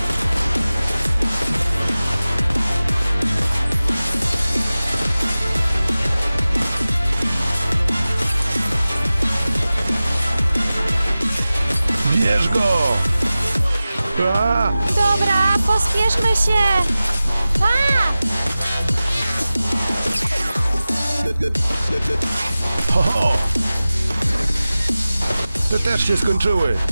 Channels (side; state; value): both; inverted; correlation -0.96